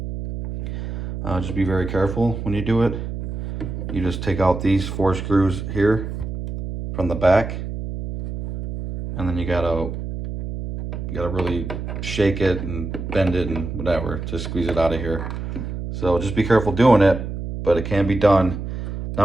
Just be very careful when you do it. You just take out these 4 screws here from the back, and then you gotta really shake it and bend it and whatever to squeeze it out of here. So just be careful doing it, but it can be done. Now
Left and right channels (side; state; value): right; noise; hum, 6 dB below the sound